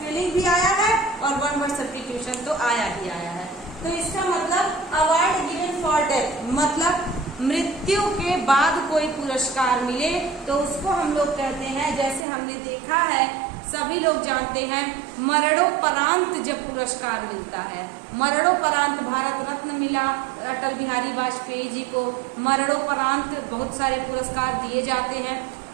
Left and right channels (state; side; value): drops out; left; at 12.2 s